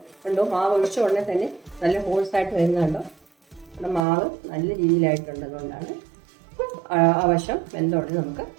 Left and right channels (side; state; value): left; drops out; at 4.0 s